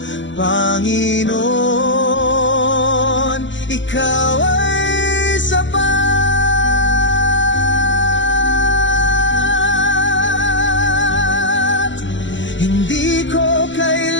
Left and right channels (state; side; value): late; right; 0.54 ms